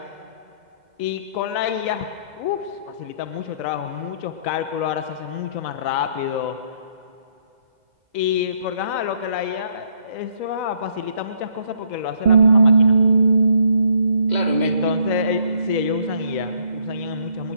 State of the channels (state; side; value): late; left; 2.0 ms